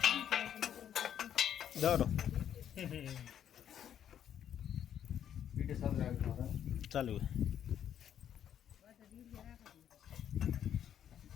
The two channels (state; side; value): quieter; right; 9.7 dB